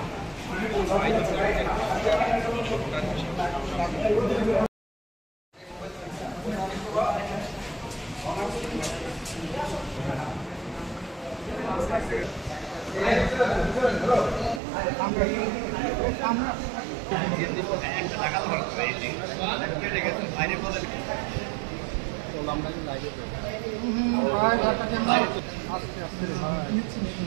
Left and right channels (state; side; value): drops out; left; at 14.6 s